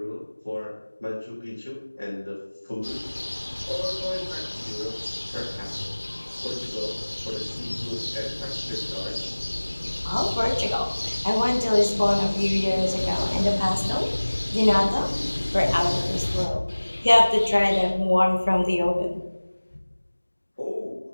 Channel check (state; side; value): inverted; both; correlation -1.00